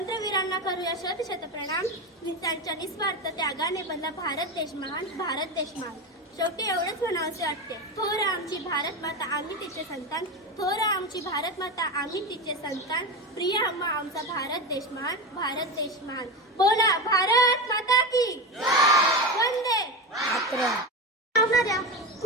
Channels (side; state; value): both; normal; correlation 0.20